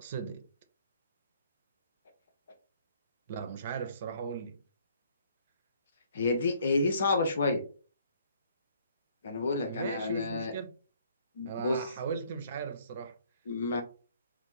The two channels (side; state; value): both; inverted; correlation -0.62